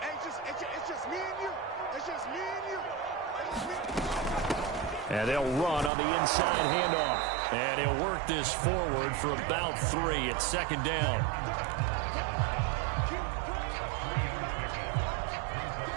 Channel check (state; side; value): drops out; left; at 5.9 s